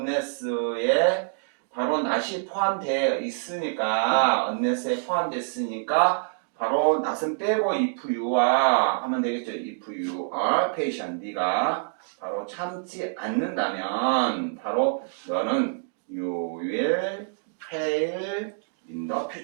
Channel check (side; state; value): left; silent; digital silence